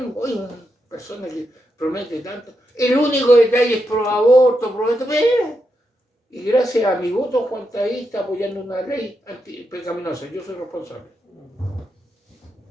hoy una persona que promete tanto. El único detalle es pro aborto, y gracias a mi voto, Juan está apoyando una ley pecaminosa. Yo soy responsable.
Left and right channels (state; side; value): normal; both; correlation 0.84